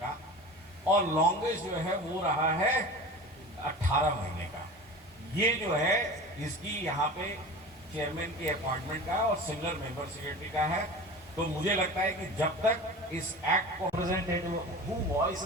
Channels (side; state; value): both; normal; correlation 0.34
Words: का, और लॉन्गेस्ट जो है वो रहा है 18 महीने का। ये जो है इसकी यहाँ पे चेयरमैन की अपॉइंटमेंट का और सिमिलर मेंबर सेक्रेटरी का है। तो मुझे लगता है कि जब तक इस एक्ट को representative who